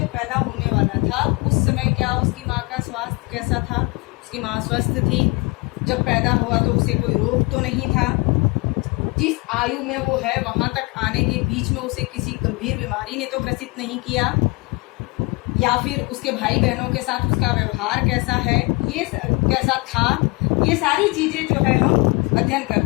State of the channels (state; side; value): quieter; right; 27.0 dB